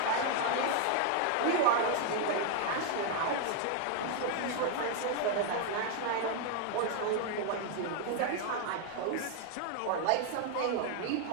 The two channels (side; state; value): both; different; correlation 0.01